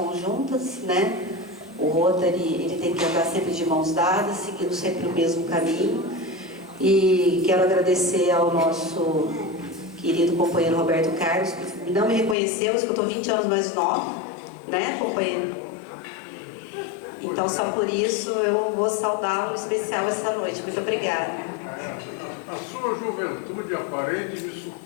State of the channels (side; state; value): right; drops out; at 12.4 s